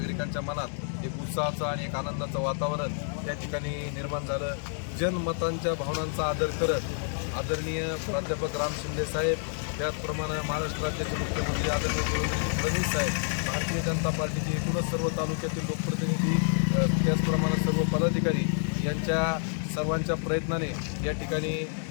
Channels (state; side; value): silent; right; 59 dB below the other